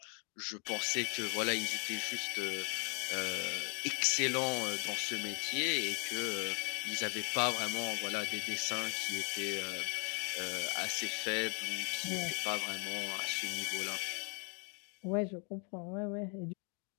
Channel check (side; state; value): right; quieter; 35.5 dB